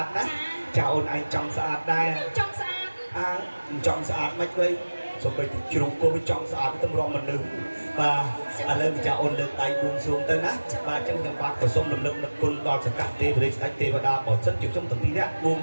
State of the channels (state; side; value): inverted; both; correlation -1.00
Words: đó chào ôn anh trong sạch đây trong sạch mấy vậy xong rồi chịu cô với trong sạch tâm rong mình đứng và lên chào ôn lực tay buông xuống tới nát và chân nhầm bạc của sông lực lực quân đo sẽ cắt tê với đánh tê và đa bỏ sân chịu trong tầng pin nè buông